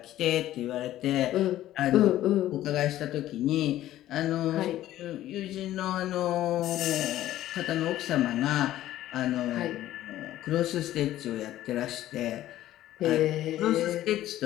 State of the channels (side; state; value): right; quieter; 13.8 dB